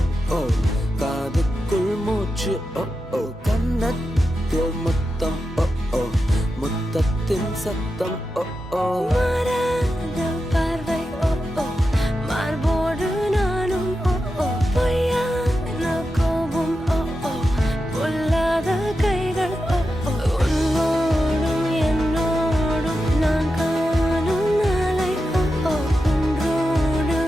ஓ காதுக்குள் மூச்சு ஓ கன்னத்தில் முத்தம் ஓ முத்தத்தின் சத்தம் ஓ மாறாத பார்வை மார்போடு நானும் பொய்யான கோபம் பொல்லாத கைகள் உன்னோடும் என்னோடும் நான் காணும் நாளை ஒன்றோடு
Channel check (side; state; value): both; normal; correlation 0.90